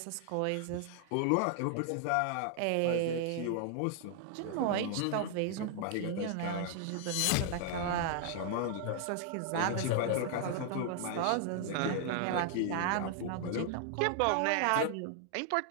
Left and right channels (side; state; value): both; different; correlation 0.00